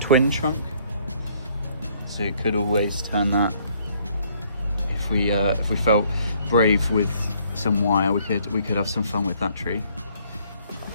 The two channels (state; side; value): inverted; both; correlation -0.64